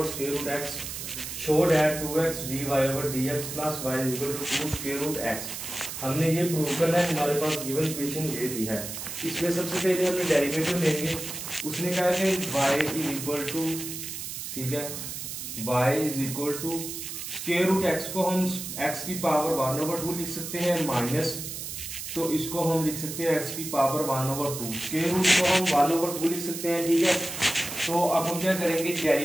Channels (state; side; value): noise; right; hiss, 7 dB below the sound